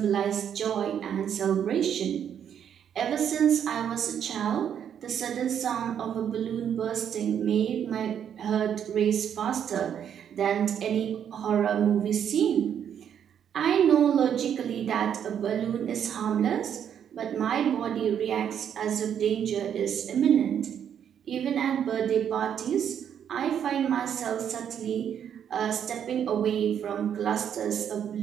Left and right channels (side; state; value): left; quieter; 8.8 dB